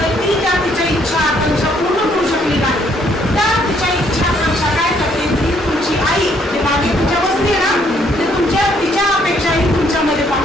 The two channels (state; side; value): normal; both; correlation 0.67